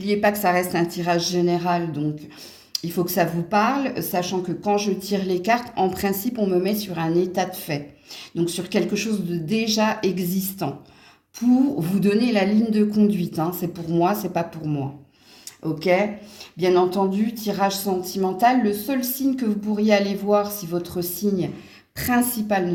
pas que ça reste un tirage général, donc il faut que ça vous parle, sachant que quand je tire les cartes, en principe, on me met sur un état de fait. Donc sur quelque chose de déjà existant, pour vous donner la ligne de conduite. C'est pour moi, c'est pas pour moi. Ok? Bien entendu, tirage sentimental, le seul signe que vous pourriez aller voir si votre signe principal ne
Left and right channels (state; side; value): identical; both; correlation 1.00